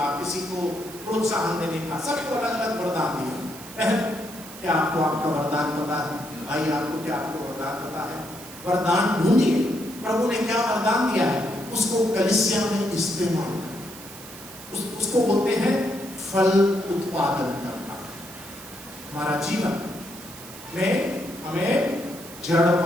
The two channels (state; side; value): noise; right; hiss, 15 dB below the sound